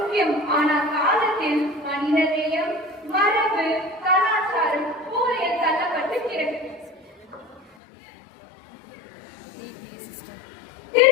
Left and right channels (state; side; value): drops out; right; at 7.8 s